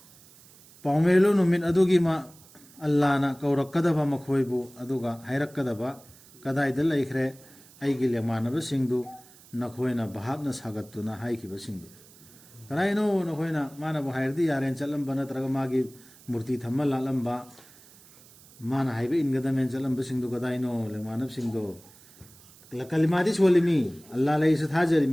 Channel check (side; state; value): right; noise; hiss, 24 dB below the sound